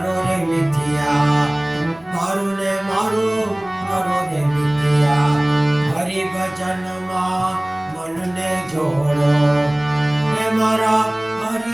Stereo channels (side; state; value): left; noise; rumble, 29 dB below the sound